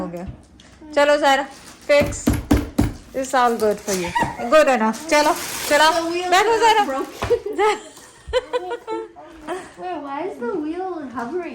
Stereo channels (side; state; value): both; identical; correlation 1.00